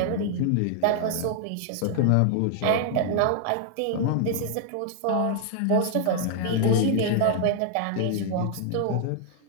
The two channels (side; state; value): both; different; correlation 0.00